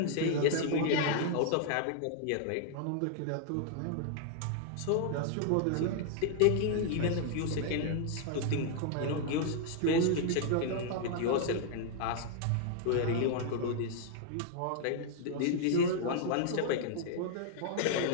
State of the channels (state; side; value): different; both; correlation 0.00